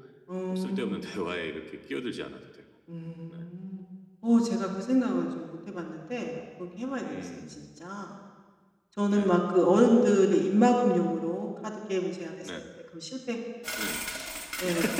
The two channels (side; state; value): both; identical; correlation 1.00